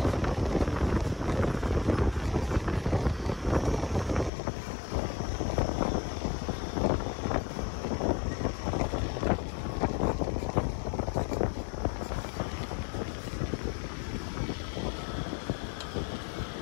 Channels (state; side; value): drops out; right; at 4.3 s